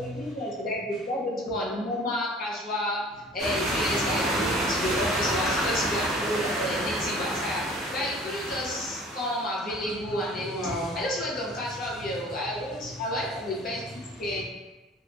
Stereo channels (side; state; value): both; normal; correlation 0.47